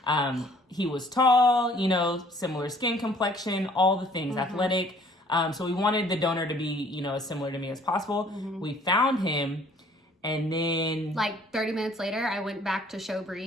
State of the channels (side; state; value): both; normal; correlation 0.57